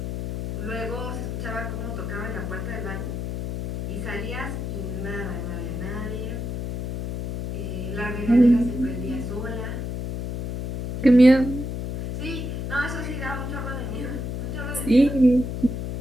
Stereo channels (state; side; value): noise; left; hum, 4 dB below the sound